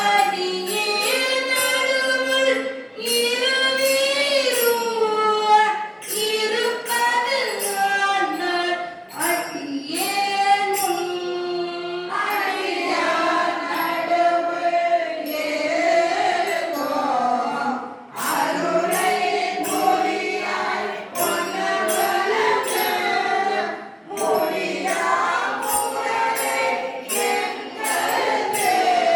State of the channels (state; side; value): identical; both; correlation 1.00